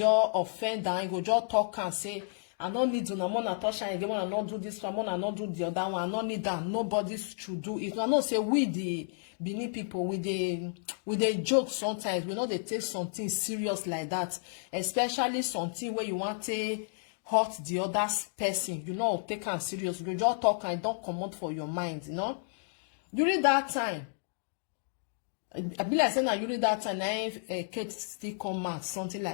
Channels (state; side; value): silent; right; digital silence